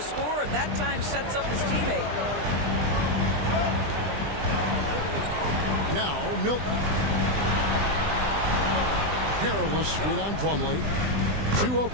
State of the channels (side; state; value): left; late; 20 ms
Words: scorer. That time sets up his teammate. Now, Milton. Harrel's screen on Plumlee. 2